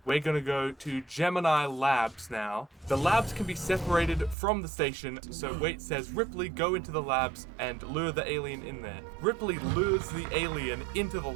We're gonna go to Gemini Labs now. The labs can be separated from the station, so Waits says, Ripley, go into the labs and lure the alien in there. Ripley lures the alien into the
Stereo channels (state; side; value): drops out; left; at 4.4 s